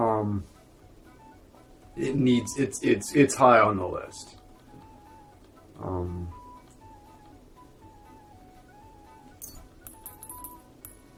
it's high on the list.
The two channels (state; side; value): identical; both; correlation 1.00